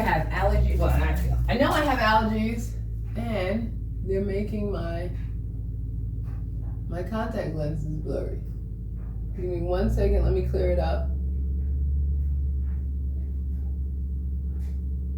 have allergies. Well, I know I have allergies, and they're making my contact lenses blurry. Give me 1 second. Let me clear it up.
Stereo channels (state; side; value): identical; both; correlation 1.00